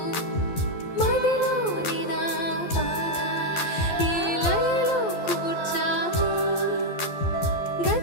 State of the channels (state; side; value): late; right; 12 ms